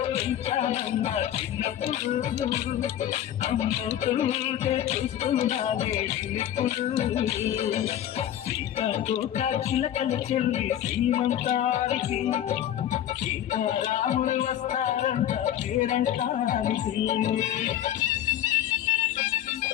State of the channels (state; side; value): quieter; right; 11.4 dB